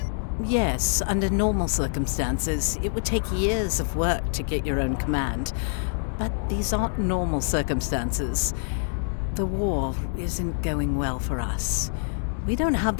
Yes, under normal circumstances, it would take years of work to get your own command. But these aren't normal circumstances. The war isn't going well for us. We don't have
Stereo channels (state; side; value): silent; right; digital silence